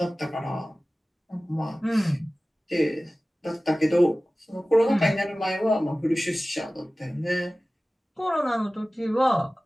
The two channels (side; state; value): both; normal; correlation 0.97